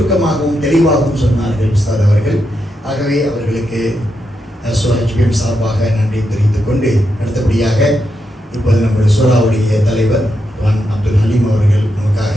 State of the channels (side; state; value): both; normal; correlation 0.84